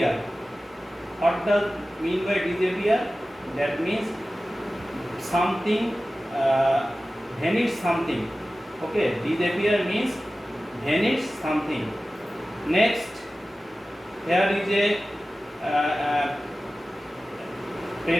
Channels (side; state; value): both; normal; correlation 0.96